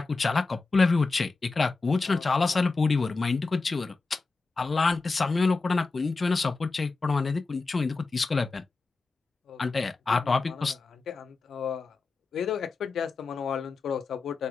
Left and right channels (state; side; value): quieter; right; 3.9 dB